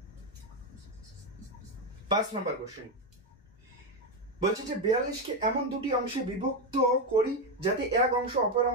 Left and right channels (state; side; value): normal; both; correlation 0.09